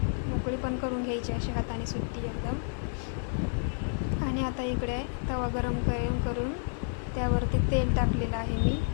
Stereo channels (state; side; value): silent; right; digital silence